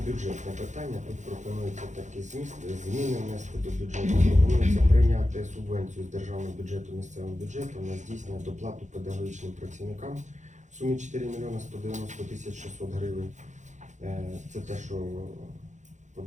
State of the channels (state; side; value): late; left; 0.35 ms